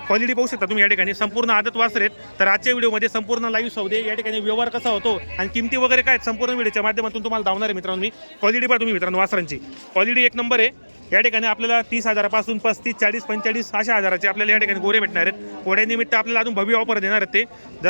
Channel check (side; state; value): both; inverted; correlation -1.00